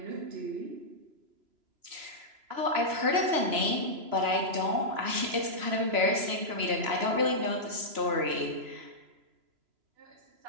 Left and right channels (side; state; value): left; late; 3.0 ms